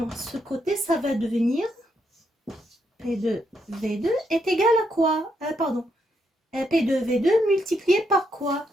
ce côté, ça va devenir P2V2 est égal à quoi? P2V2 multiplié par quoi?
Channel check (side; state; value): both; normal; correlation 0.78